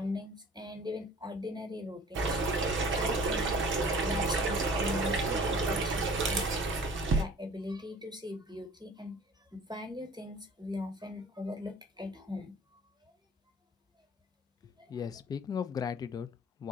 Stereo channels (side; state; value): both; normal; correlation 0.47